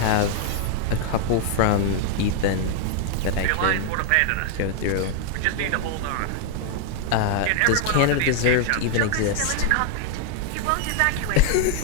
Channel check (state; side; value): different; both; correlation 0.00